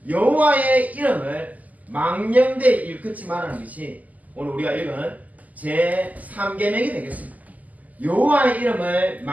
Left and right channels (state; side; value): late; left; 0.077 ms